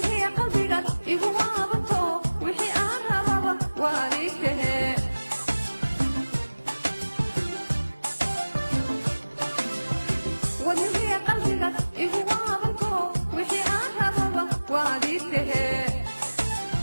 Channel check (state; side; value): inverted; both; correlation -1.00